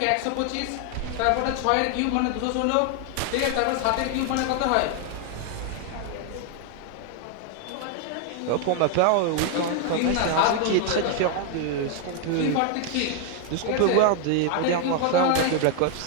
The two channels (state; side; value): different; both; correlation 0.00